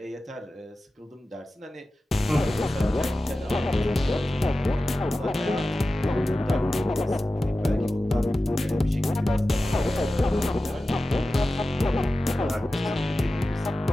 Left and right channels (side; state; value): both; normal; correlation 0.94